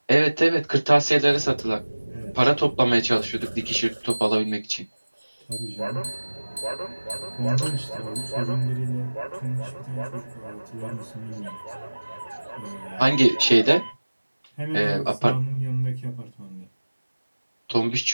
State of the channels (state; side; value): inverted; both; correlation -1.00